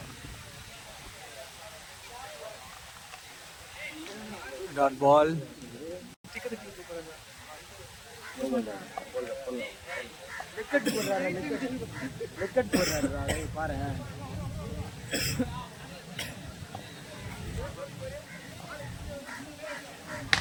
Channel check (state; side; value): identical; both; correlation 1.00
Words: Dot ball. பாரு.